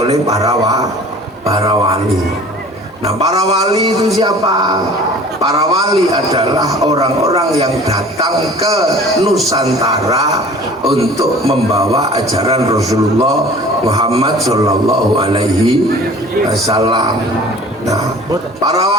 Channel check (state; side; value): normal; both; correlation 0.46